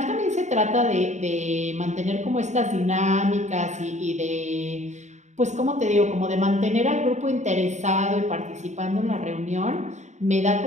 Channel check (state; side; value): late; left; 0.34 ms